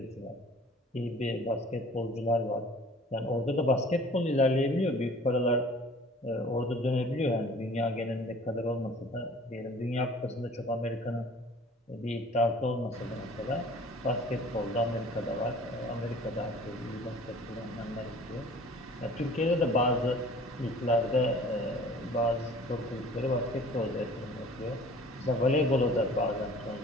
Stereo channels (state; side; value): normal; both; correlation 0.48